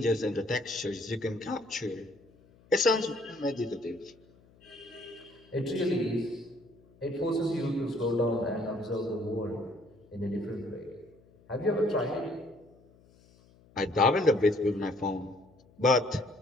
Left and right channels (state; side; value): noise; left; hum, 28 dB below the sound